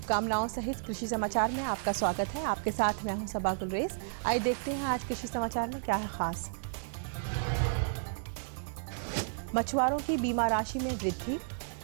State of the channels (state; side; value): silent; left; 56 dB below the other